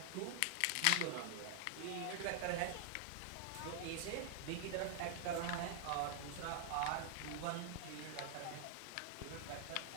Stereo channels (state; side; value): different; both; correlation 0.00